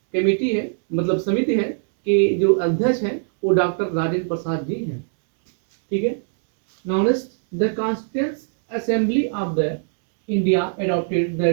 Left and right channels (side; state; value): left; silent; digital silence